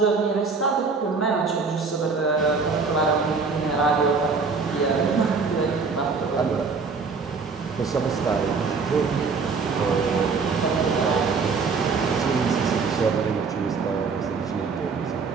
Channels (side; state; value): left; quieter; 4.8 dB